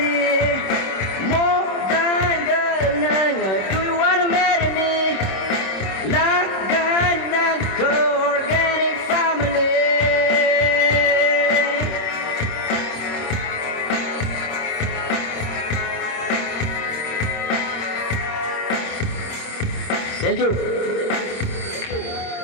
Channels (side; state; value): right; late; 26 ms